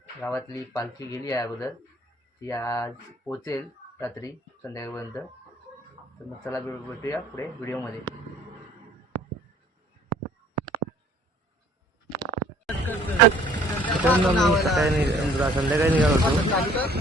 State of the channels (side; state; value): both; normal; correlation 0.56